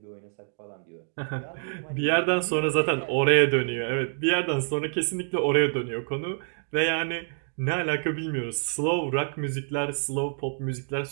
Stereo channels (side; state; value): left; silent; 60 dB below the other